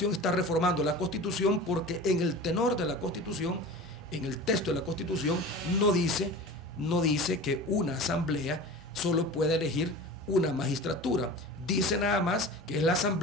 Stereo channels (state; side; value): normal; both; correlation 0.35